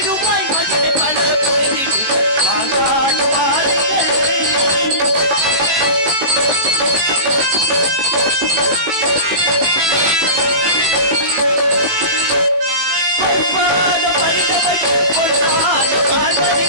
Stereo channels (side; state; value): left; late; 18 ms